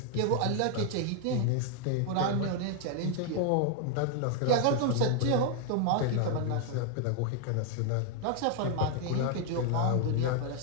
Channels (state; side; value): different; both; correlation 0.00